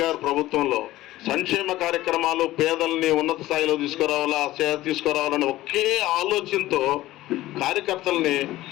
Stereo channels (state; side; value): quieter; right; 16.2 dB